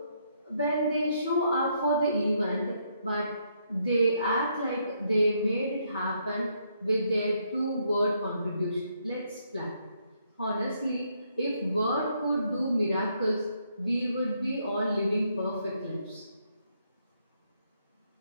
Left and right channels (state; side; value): inverted; both; correlation -0.74